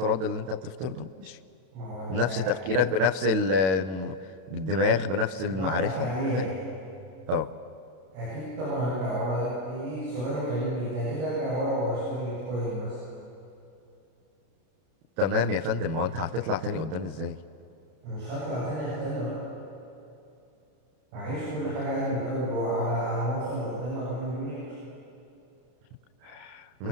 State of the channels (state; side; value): late; left; 32 ms